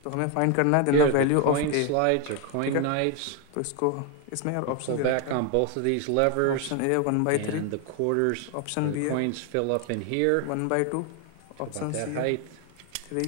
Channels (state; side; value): different; both; correlation 0.01